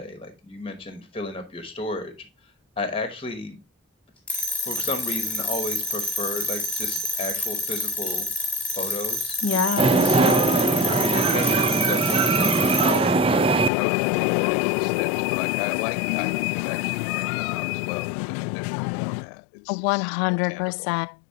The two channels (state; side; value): drops out; right; at 13.7 s